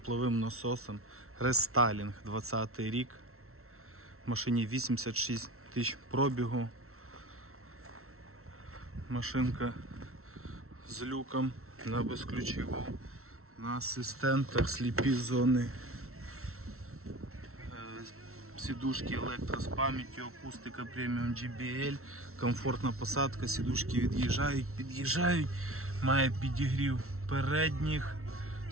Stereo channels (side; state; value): left; late; 0.63 ms